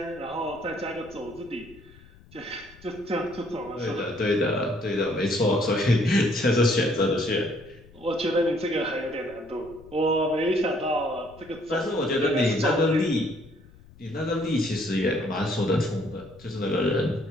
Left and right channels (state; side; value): noise; left; rumble, 23 dB below the sound